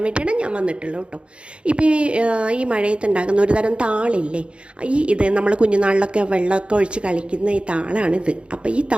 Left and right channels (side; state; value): left; late; 0.057 ms